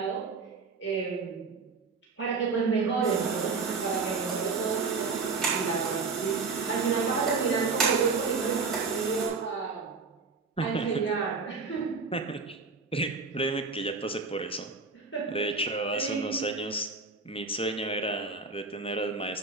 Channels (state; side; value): quieter; left; 4.5 dB